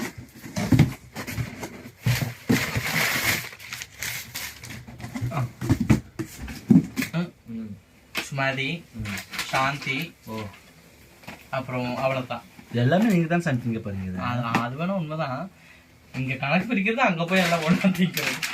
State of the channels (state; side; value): identical; both; correlation 1.00